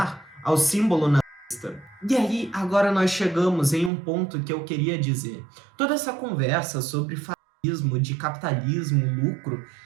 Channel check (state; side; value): drops out; left; at 3.9 s